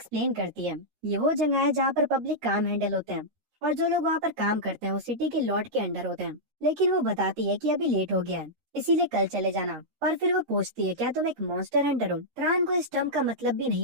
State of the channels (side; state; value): left; late; 13 ms